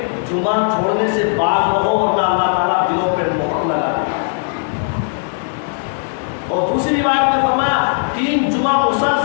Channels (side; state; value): right; silent; digital silence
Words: جمعہ چھوڑنے سے باز رہو ورنہ اللہ تعالیٰ دلوں پہ مہر لگا دے. اور دوسری روایت میں فرمایا 3 جمعہ